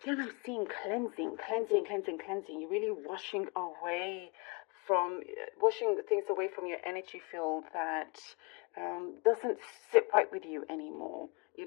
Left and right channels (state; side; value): quieter; right; 30.8 dB